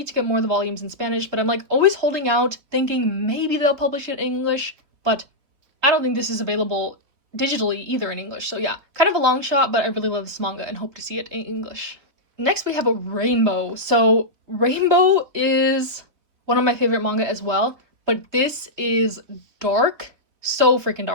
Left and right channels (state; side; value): late; left; 3.5 ms